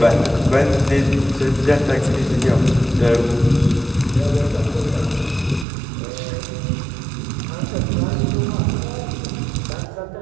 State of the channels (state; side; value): drops out; left; at 5.7 s